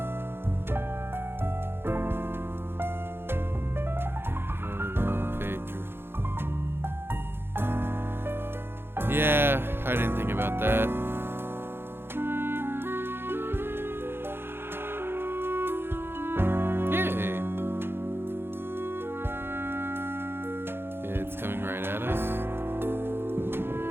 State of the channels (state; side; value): late; left; 0.11 ms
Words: Yeah, I didn't think about that. Yay. It's coming right at us.